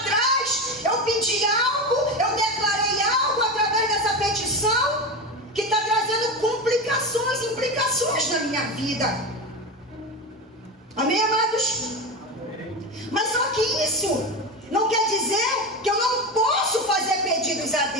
eu pedi algo, eu declarei algo através dessa petição que está trazendo complicações, implicações na minha vida. Amém, amados? Mas só que isso não quer dizer que eu não posso fazer pedidos a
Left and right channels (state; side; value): normal; both; correlation 0.21